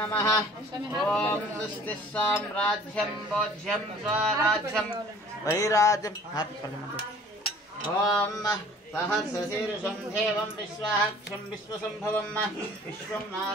ओम स्वस्ति साम्राज्यं भोज्यं स्वराज्यं वैराज्यं ओम सहस्रशीर्षं देवं विश्वाक्षं विश्वसंभवं विश्वं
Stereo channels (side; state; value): both; normal; correlation 0.51